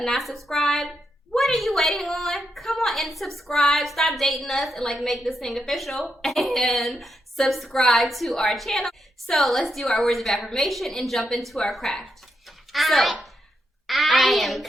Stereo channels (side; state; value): both; normal; correlation 0.83